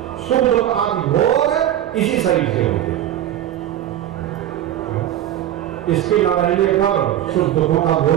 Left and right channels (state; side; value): quieter; left; 11.9 dB